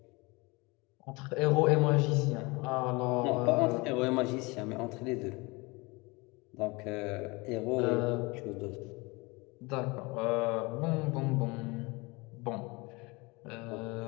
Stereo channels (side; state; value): right; quieter; 25.6 dB